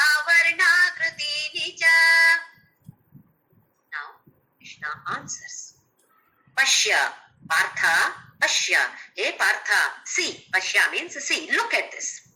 Varna Krutini cha. Now Krishna answers. Pashya, Partha, Pashya. Hey Partha, see. Pashya means see. Look at this.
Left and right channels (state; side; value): identical; both; correlation 1.00